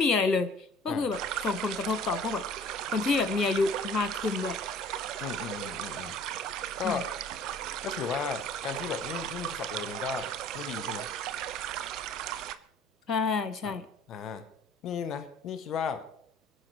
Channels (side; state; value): both; normal; correlation 0.50